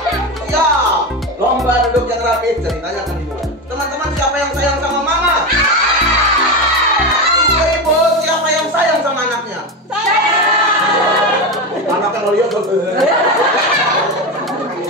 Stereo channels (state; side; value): normal; both; correlation 0.18